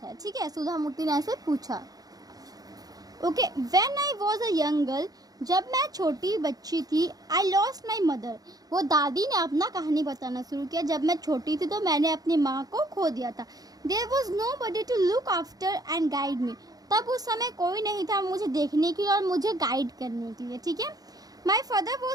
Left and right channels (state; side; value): late; left; 0.18 ms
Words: है, ठीक है, सुधा मूर्ति ने ऐसे पूछा। Okay, when I was a young girl, जब मैं छोटी बच्ची थी, आई लॉस्ट माई मदर। वो दादी ने अपना कहानी बताना शुरू किया। जब मैं छोटी थी तो मैंने अपनी माँ को खो दिया था। There was nobody to look after and guide me. तब उस समय कोई नहीं था मुझे देखने के लिए और मुझे गाइड करने के लिए, ठीक है। My father